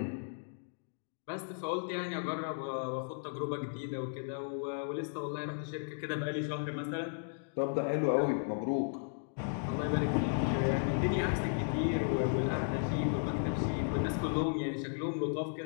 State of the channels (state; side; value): silent; right; digital silence